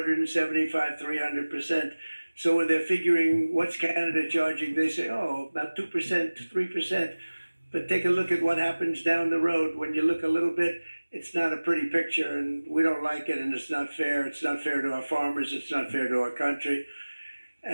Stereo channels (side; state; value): both; inverted; correlation -1.00